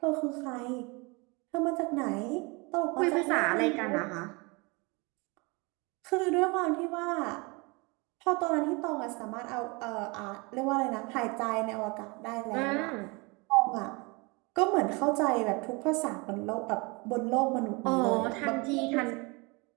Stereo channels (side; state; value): left; quieter; 28.0 dB